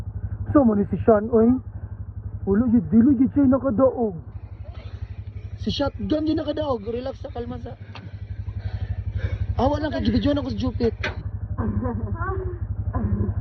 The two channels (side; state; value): both; identical; correlation 1.00